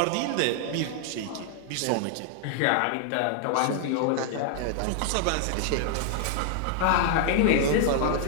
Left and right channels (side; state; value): both; different; correlation 0.00